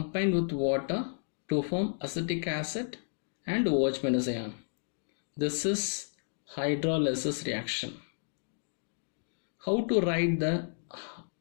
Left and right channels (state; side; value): silent; right; digital silence